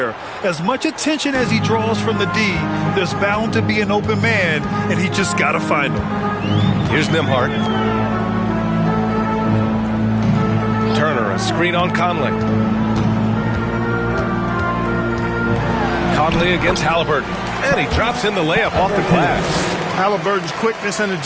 As much attention as he draws from the D, there's bound to be an open man, and he just got to find him. Here's Nembhard. Turner, a screen on Conley. Conley against Halliburton. And he drops in the layup off the glass. Halliburton's quickness and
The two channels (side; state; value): both; identical; correlation 1.00